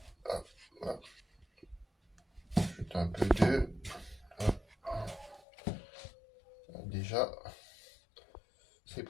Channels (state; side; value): drops out; right; at 5.4 s